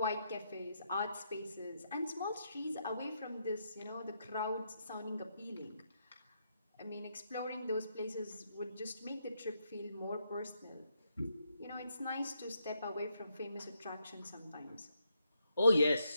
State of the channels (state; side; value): inverted; both; correlation -0.79